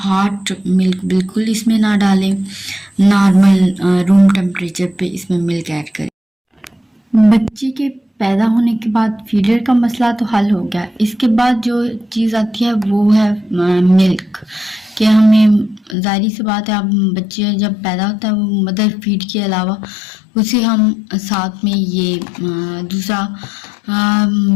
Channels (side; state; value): right; drops out; at 16.0 s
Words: मिल्क बिल्कुल इसमें ना डालें, नॉर्मल रूम टेम्परेचर पे इसमें मिल्क ऐड करें। बच्चे के पैदा होने के बाद फीडर का मसला तो हल हो गया। इसके बाद जो चीज़ आती है वो है मिल्क, कि हमें ज़ाहिर सी बात है, अब बच्चे जब पैदा होता है वो मदर फीड के अलावा उसे हम साथ में ये दूसरा